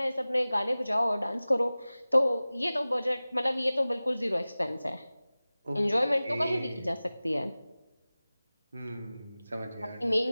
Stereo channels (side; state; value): both; inverted; correlation -0.98